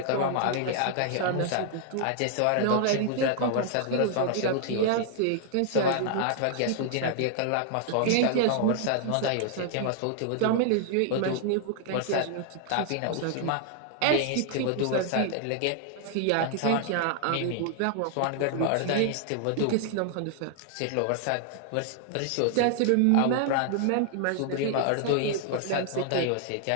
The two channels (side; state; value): both; different; correlation 0.00